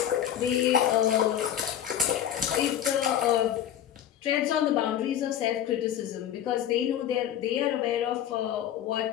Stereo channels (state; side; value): quieter; right; 10.4 dB